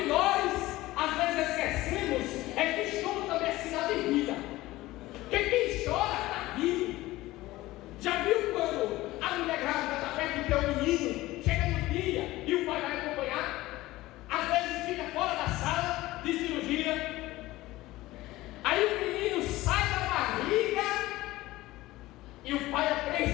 nós às vezes esquecemos é que choro também é sinal de vida. Porque quem chora está vivo. Já viu quando a mulher grávida está perto de ter um menino, chega no dia e o pai vai acompanhar? Às vezes fica fora da sala de cirurgia. Aí o menino sai da barriga e o pai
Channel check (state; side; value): quieter; right; 17.9 dB